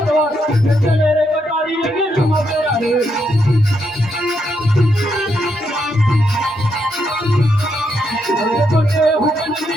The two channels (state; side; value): normal; both; correlation 0.79